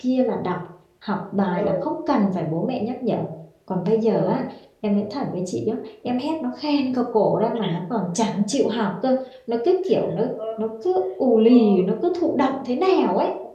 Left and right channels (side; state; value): both; identical; correlation 1.00